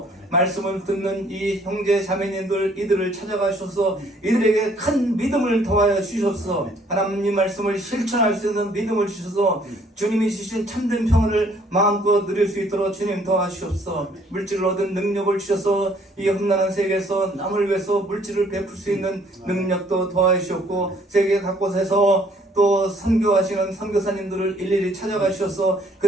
말씀을 듣는 이 형제 자매님들 이들을 찾아가 주셔서 이들에게 큰 믿음을 더하여 주셔서 하나님 말씀을 실천할 수 있는 믿음을 주셔서 주님이 주신 참된 평안을 마음껏 누릴 수 있도록 주님 도와주옵소서. 물질을 얻은 능력을 주셔서 이 험난한 세계에서 남을 위해서 물질을 베풀 수 있는 능력도 도와주시옵고 세계 각곳에서 또 선교하시는 선교사님들을 일일이 찾아가 주셔서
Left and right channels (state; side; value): normal; both; correlation 0.62